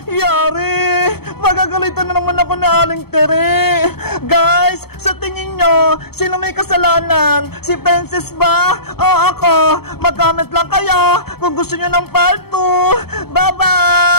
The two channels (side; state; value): right; late; 0.96 ms